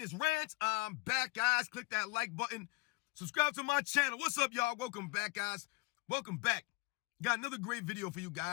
Rants? I'm back, guys. Click that like button. Subscribe to my channel. What's up, y'all? Welcome back, guys. Welcome back. Got another great video for you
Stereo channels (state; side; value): quieter; right; 25.0 dB